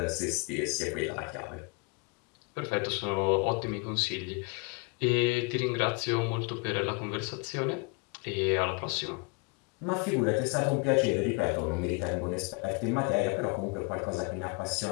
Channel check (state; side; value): quieter; right; 29.3 dB